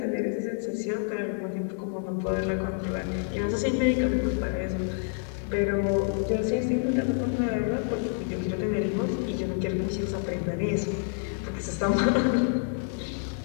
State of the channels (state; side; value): silent; right; 59 dB below the other